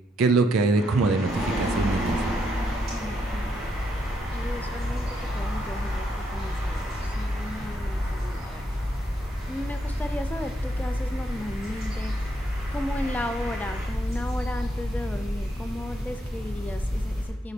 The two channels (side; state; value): both; normal; correlation 0.77